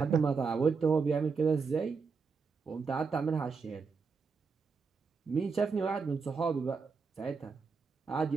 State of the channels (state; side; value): quieter; left; 5.1 dB